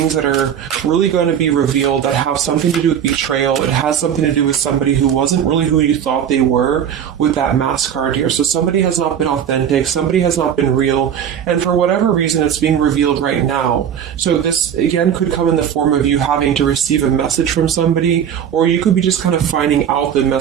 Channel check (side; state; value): left; quieter; 8.9 dB